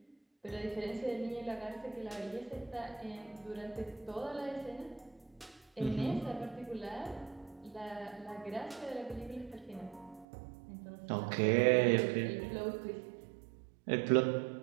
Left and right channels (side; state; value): left; drops out; at 10.2 s